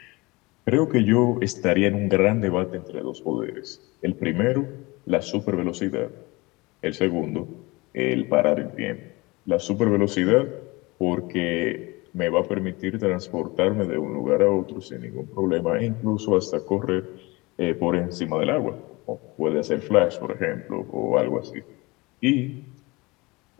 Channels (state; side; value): quieter; right; 23.8 dB